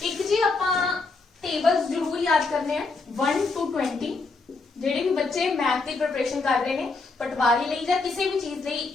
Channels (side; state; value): right; quieter; 3.9 dB